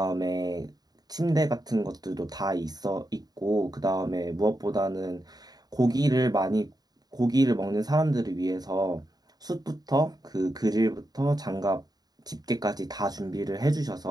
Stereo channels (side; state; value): left; late; 0.19 ms